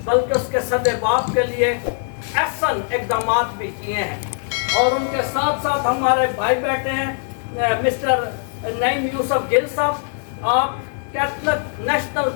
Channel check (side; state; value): right; silent; 65 dB below the other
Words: بلکہ اس کے صد باب کے لیے احسن اقدامات بھی کیے ہیں. اور ان کے ساتھ ساتھ ہمارے بھائی بیٹھے ہیں مسٹر نعیم یوسف گل صاحب, آپ Catholic national